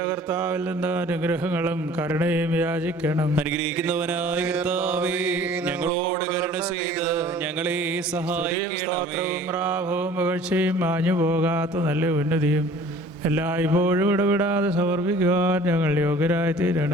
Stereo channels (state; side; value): normal; both; correlation 0.49